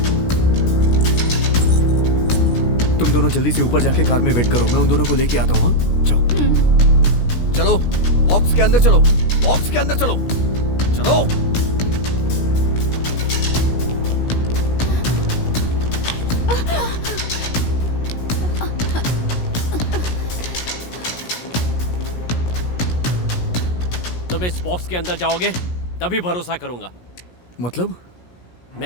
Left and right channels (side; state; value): right; late; 17 ms